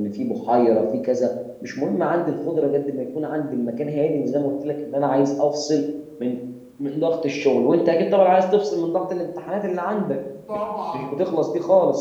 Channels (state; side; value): identical; both; correlation 1.00